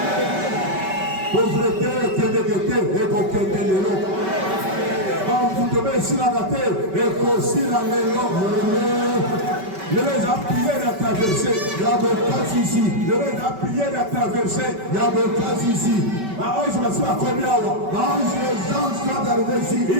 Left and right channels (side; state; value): left; late; 5.2 ms